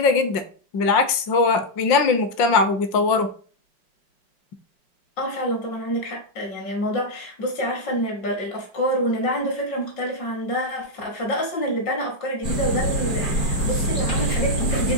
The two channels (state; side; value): late; right; 5.6 ms